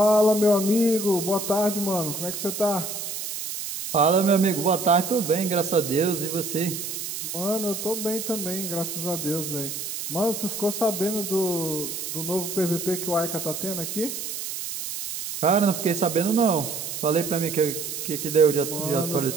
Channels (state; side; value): noise; right; hiss, 6 dB below the sound